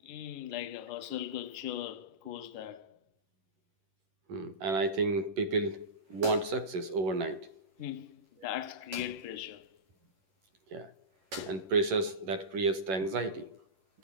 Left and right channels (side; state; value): left; late; 11 ms